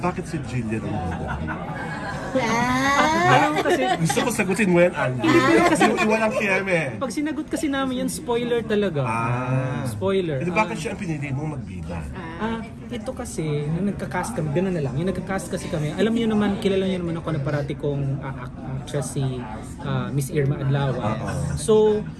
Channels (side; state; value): both; identical; correlation 1.00